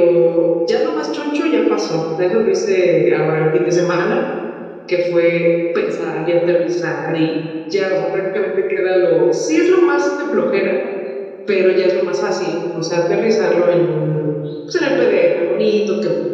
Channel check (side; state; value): both; identical; correlation 1.00